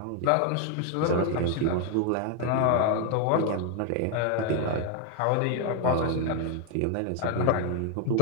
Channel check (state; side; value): different; both; correlation 0.01